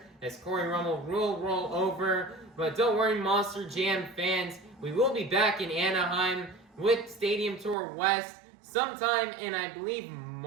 as Cory Rummell will roll over. But don't worry, Monster Jam fans. We will be back in Anaheim with Stadium Tour West sometime in, I believe,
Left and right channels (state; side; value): drops out; left; at 7.8 s